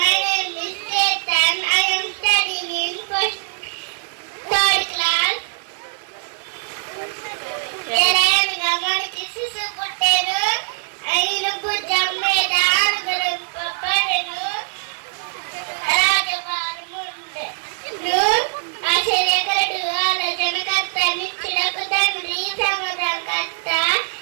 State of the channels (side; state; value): left; silent; digital silence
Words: name is Chetan. I am studying in third class. మనకి శిశు పుట్టారు ఆయన భుజం మీద ఆరుగురు పడను రాజవారముండే ఆశ్చర్యకరుడు ఆలోచనకర్త నిత్యుడకు తండ్రి సమాధానకర్త